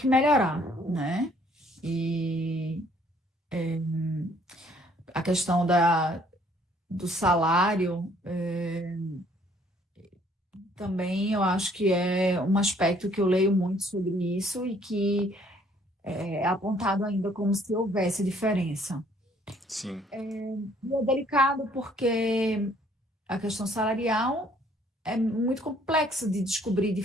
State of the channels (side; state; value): both; normal; correlation 0.62